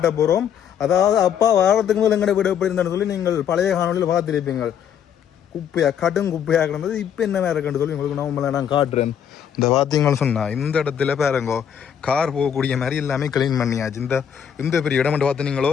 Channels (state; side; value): quieter; right; 8.7 dB